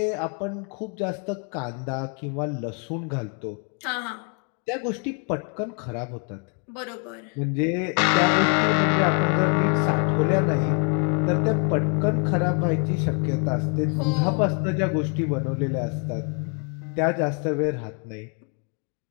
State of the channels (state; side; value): quieter; right; 39.2 dB